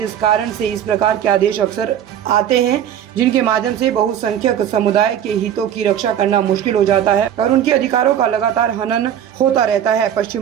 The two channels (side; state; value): left; quieter; 10.0 dB